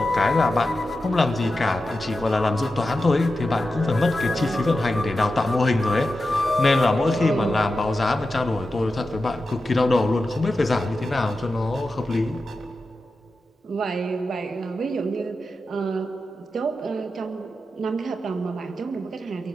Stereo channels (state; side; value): normal; both; correlation 0.91